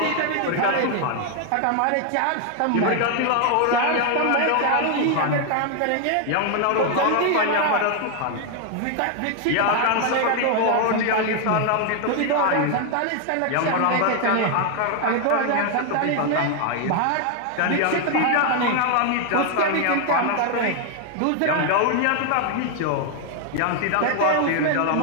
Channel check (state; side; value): different; both; correlation 0.00